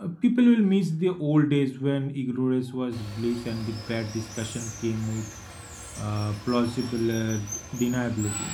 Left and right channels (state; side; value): identical; both; correlation 1.00